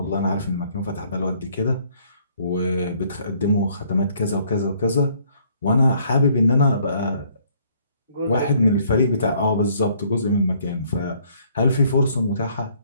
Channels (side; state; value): both; inverted; correlation -0.63